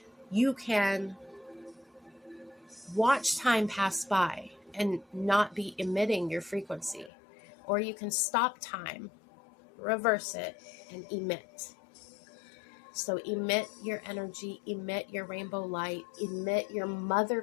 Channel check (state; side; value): drops out; right; at 7.1 s